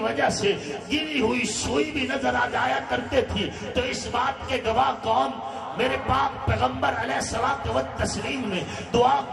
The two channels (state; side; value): identical; both; correlation 1.00